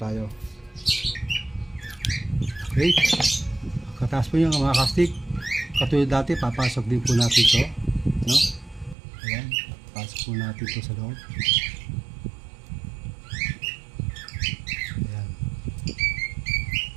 Okay? Katapos po yung mga kastig. Katulad dati, papasok din po natin ito, no? Ayan, pasok po natin ito sa loob. Ayan.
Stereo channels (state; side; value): drops out; left; at 9.0 s